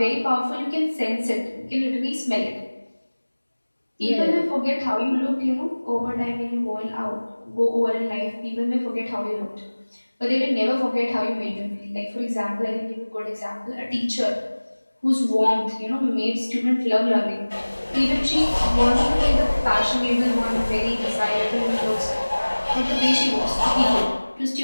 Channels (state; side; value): inverted; both; correlation -1.00